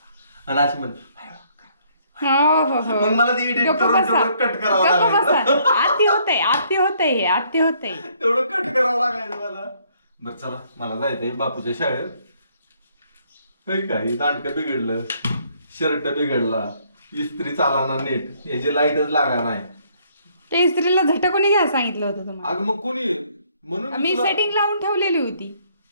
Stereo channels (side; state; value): both; inverted; correlation -0.66